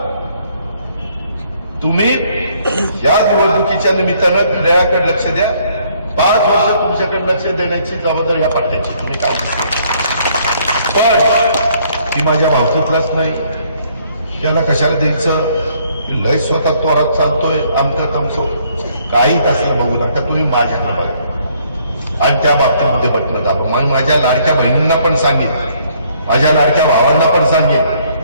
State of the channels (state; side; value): inverted; both; correlation -0.65